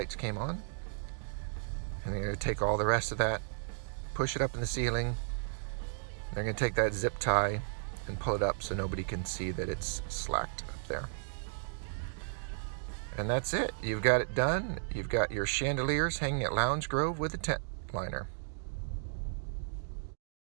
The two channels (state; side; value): silent; left; digital silence